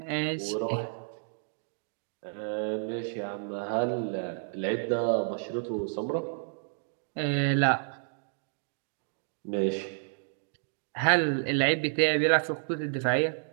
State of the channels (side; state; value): left; silent; digital silence